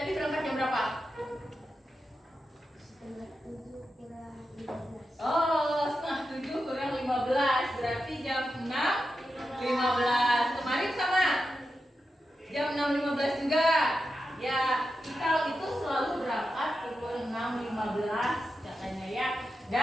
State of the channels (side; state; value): both; normal; correlation 0.89